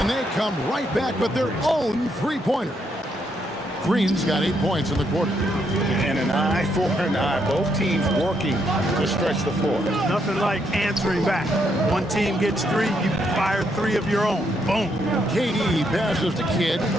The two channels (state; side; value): normal; both; correlation 0.76